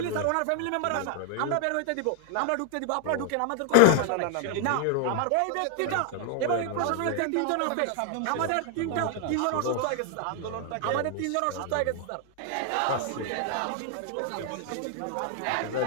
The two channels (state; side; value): different; both; correlation 0.00